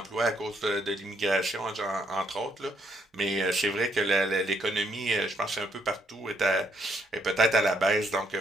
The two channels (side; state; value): both; normal; correlation 0.72